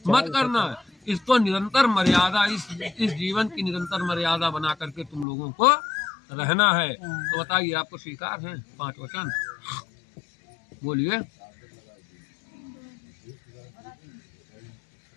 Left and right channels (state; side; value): drops out; right; at 5.2 s